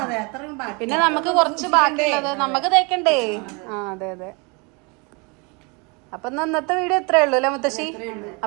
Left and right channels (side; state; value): left; quieter; 30.7 dB